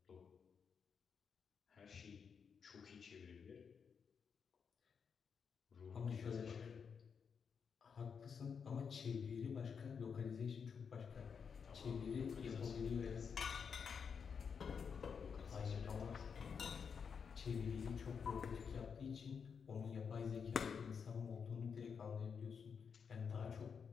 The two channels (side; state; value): right; quieter; 6.4 dB